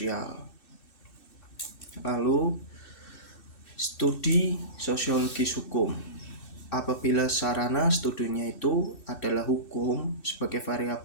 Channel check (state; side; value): late; right; 2.6 ms